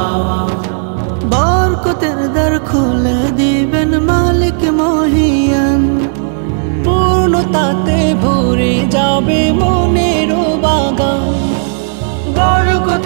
বরকতের দ্বার খুলে দিবেন মালিক মহিয়ান, পূর্ণতাতে ভরে যাবে মনের বাগান।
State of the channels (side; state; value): left; silent; digital silence